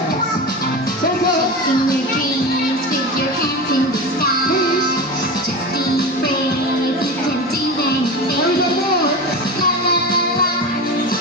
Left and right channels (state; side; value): normal; both; correlation 0.26